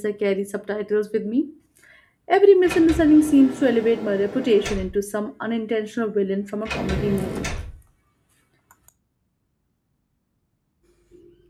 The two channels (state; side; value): identical; both; correlation 1.00